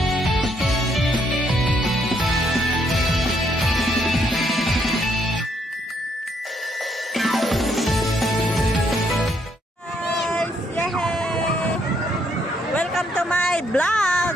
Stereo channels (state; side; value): normal; both; correlation 0.72